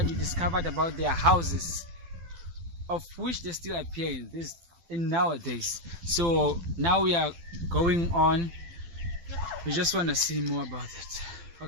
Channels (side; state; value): left; late; 12 ms